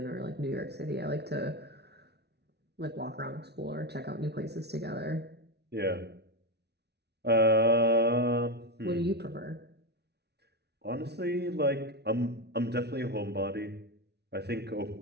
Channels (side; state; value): left; late; 0.49 ms